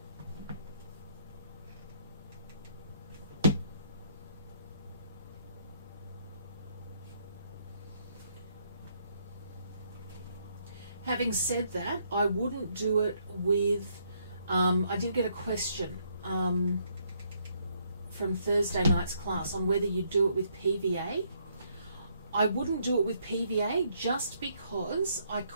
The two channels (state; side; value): inverted; both; correlation -0.71